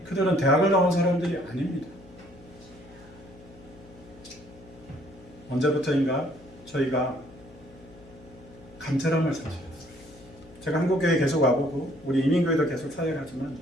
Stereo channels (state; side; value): noise; left; hum, 22 dB below the sound